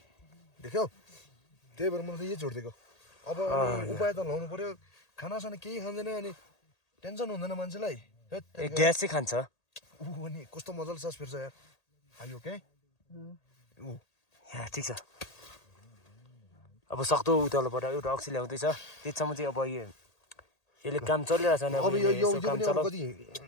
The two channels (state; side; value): late; right; 1.8 ms